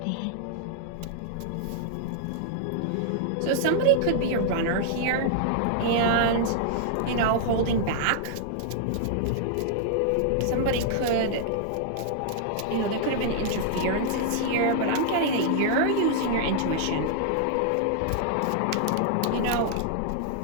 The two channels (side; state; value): both; different; correlation -0.01